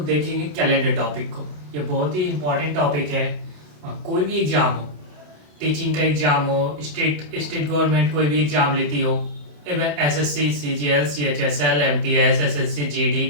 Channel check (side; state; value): left; late; 27 ms